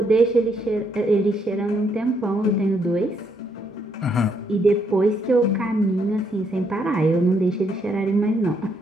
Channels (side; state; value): both; normal; correlation 0.73